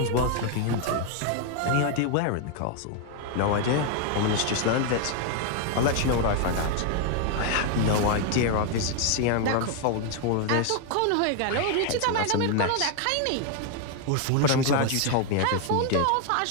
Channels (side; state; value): both; different; correlation 0.01